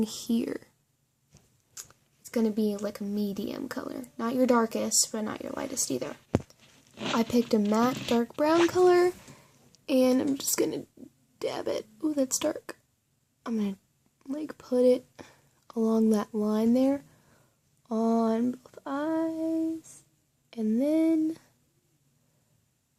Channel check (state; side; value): identical; both; correlation 1.00